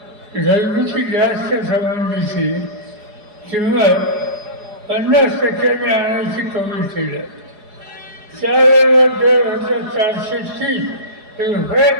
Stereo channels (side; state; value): left; late; 4.8 ms